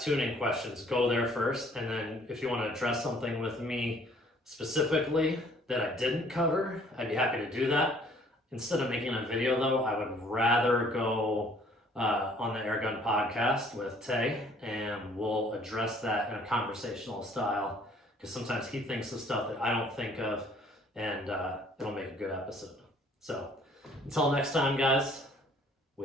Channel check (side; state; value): both; normal; correlation 0.58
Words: tuning questions, go there first, and then if you want to address something with me specifically that I didn't cover, I'd be happy to do that. Instead of making a video though, I would rather go on the Airgun podcast with Tay, and we'll address that in a conversational style, because sometimes he thinks of stuff that I don't think of, and it'll make a good episode. So until next time, guys,